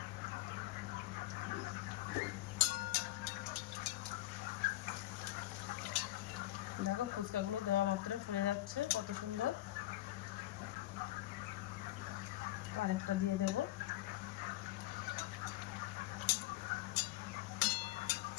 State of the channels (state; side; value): quieter; right; 16.0 dB